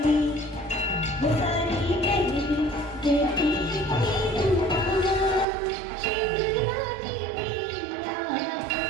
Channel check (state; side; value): drops out; left; at 5.5 s